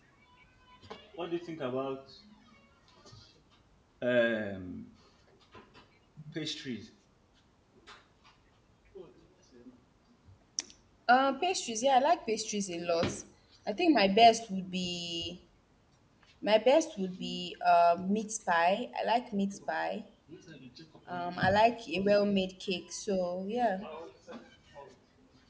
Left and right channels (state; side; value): identical; both; correlation 1.00